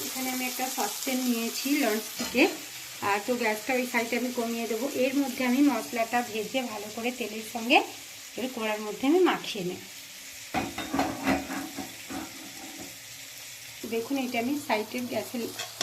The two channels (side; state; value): both; identical; correlation 1.00